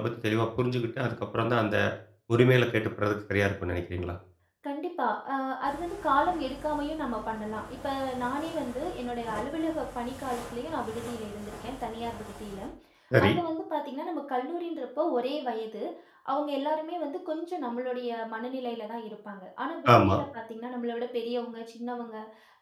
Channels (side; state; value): both; identical; correlation 1.00